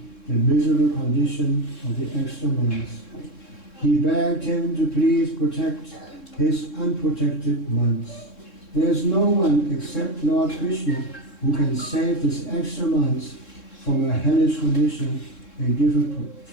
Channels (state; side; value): late; right; 3.7 ms